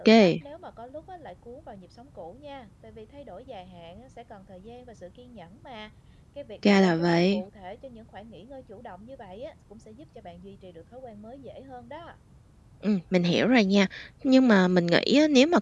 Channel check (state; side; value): identical; both; correlation 1.00